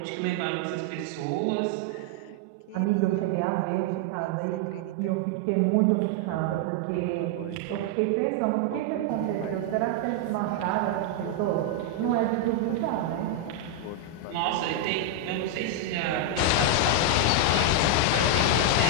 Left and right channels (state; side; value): different; both; correlation 0.00